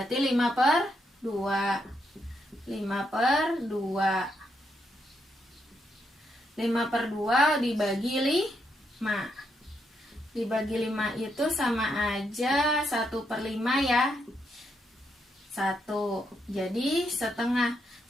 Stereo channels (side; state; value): both; normal; correlation 0.79